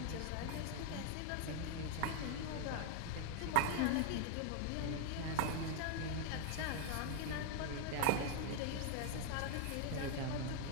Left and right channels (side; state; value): both; different; correlation 0.00